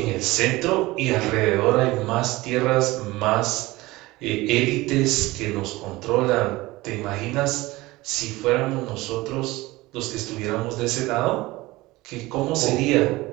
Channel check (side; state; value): left; quieter; 19.9 dB